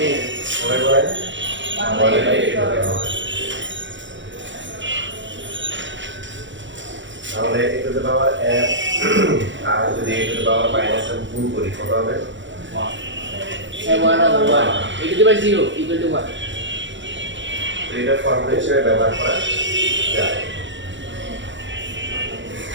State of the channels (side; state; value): left; late; 0.54 ms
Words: সবাই বলেন 1/8 তাহলে এগুলোতে পাওয়ার m আর যদি এগুলোতে পাওয়ার মাইনাস m গুণ করি কত হবে? 1 over 1 a to the power 0 equal to 1. তো এটা ফর্মুলা হিসেবে ব্যবহার করা যায়।